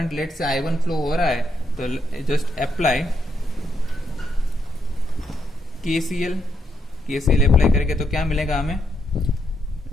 लेट से I1 फ्लो हो रहा है, तो जस्ट अप्लाई KCL अप्लाई करके तो क्या मिलेगा हमें,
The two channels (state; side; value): normal; both; correlation 0.79